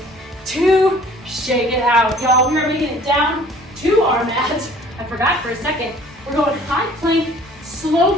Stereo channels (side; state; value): both; normal; correlation 0.52